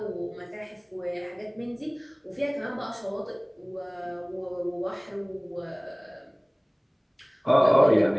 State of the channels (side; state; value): both; identical; correlation 1.00